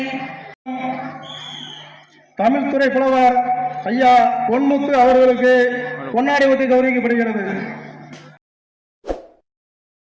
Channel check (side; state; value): both; identical; correlation 1.00